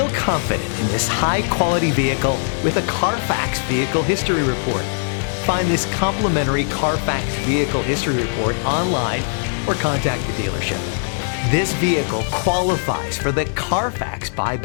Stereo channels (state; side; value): silent; right; digital silence